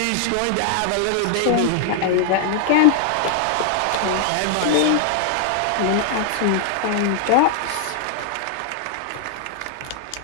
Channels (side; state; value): both; different; correlation 0.00